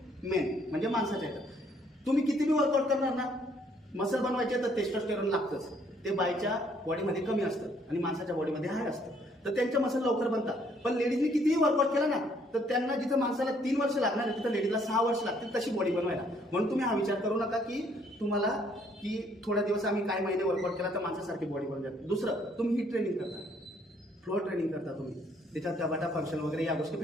मेन, म्हणजे माणसाच्या याच्यात तुम्ही किती बी वर्कआउट करणार ना, मसल बनवायचे तर टेस्टोस्टेरोन लागतंच, ते बाईच्या बॉडीमध्ये कमी असतं आणि माणसाच्या बॉडीमध्ये हाय असतं, तर त्यांच्या मसल लवकर बनतात। पण लेडीजने कितीही वर्कआउट केला ना, तर त्यांना जिथं माणसाला 3 वर्ष लागणार आहे तिथं लेडीजला 6 वर्ष लागतील तशी बॉडी बनवायला। म्हणून तुम्ही हा विचार करू नका की तुम्हाला की थोड्या दिवस आम्ही काही महिने वर्कआउट केला तर माणसासारखी बॉडी बनवून जाते। दुसरं, तुम्ही ही ट्रेनिंग करता, फ्लोअर ट्रेनिंग करता तुम्ही, त्याच्यात गटाटा फंक्शन वगैरे या गोष्टी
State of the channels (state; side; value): normal; both; correlation 0.66